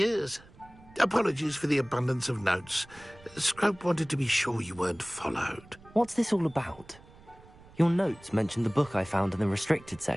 Apologies for the abundance of notes. Scrope wanted to be sure you weren't followed. What's this all about? Your notes mentioned the book I found in the restricted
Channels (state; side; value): noise; right; rumble, 23 dB below the sound